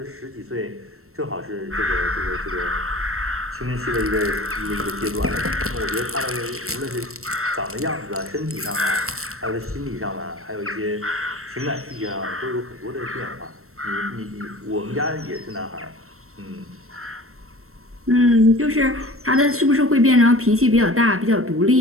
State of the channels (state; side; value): late; left; 0.63 ms